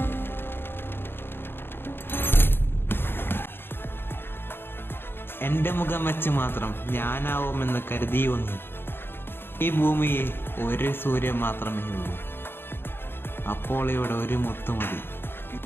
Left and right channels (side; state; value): right; late; 0.10 ms